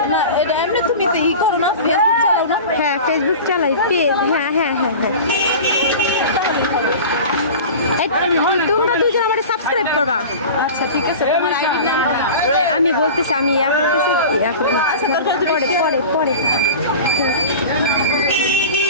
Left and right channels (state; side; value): inverted; both; correlation -0.34